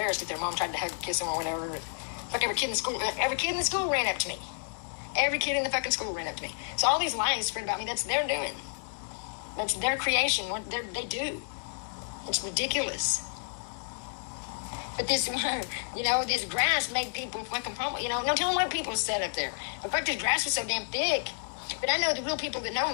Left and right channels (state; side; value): silent; right; digital silence